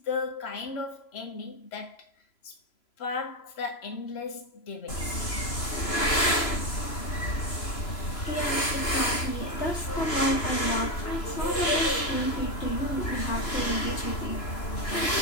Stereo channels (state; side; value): late; right; 3.0 ms